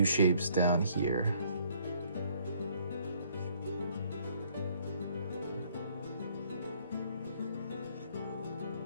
shapes down here.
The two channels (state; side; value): inverted; both; correlation -0.64